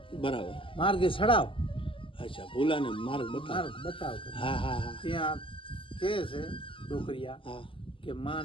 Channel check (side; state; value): right; late; 0.25 ms